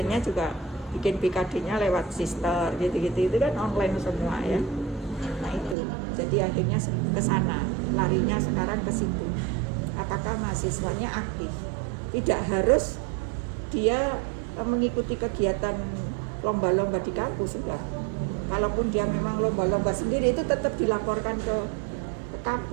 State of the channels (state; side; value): drops out; left; at 5.8 s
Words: juga bikin BKD-nya lewat sister gitu-gitu, itu kan online semua ya. Nah itu. Jadi akhirnya ke sana, larinya sekarang ke situ. Apakah mahasiswanya aktif? Tidak harus dia mengikuti kegiatan lomba-lomba di kampus, enggak. Kalaupun dia memang lomba-lomba sendiri itu tetap dilaporkan ke